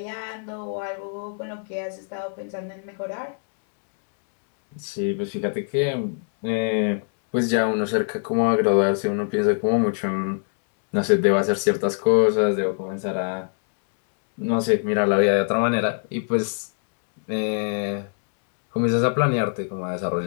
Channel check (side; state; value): right; silent; digital silence